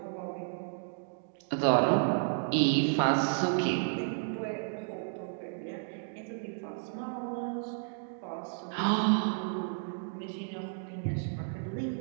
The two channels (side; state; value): left; silent; digital silence